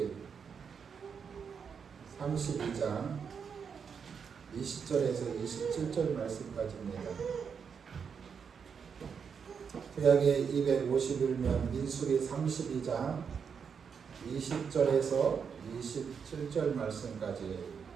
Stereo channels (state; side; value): quieter; left; 6.5 dB